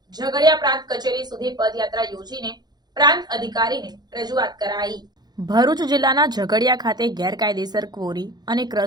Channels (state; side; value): late; left; 0.20 ms